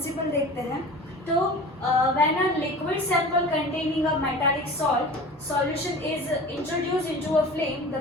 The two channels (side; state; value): both; normal; correlation 0.38